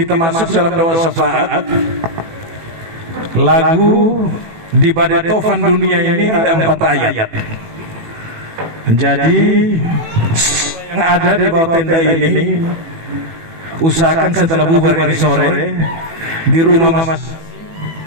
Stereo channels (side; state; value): left; late; 18 ms